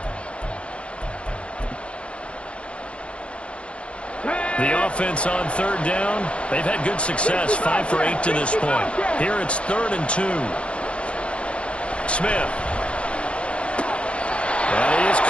The offense on 3rd down, they've had good success, 5 for 8 to this point. Here it's 3rd and 2. Smith. And he is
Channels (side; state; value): right; late; 0.059 ms